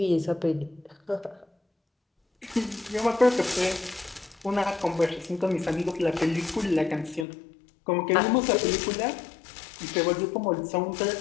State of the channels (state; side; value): drops out; right; at 7.2 s